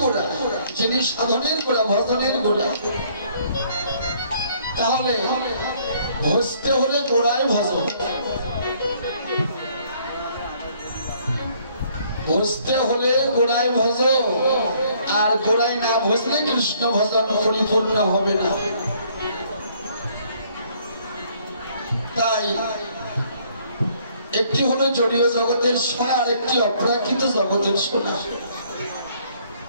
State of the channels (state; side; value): inverted; both; correlation -0.63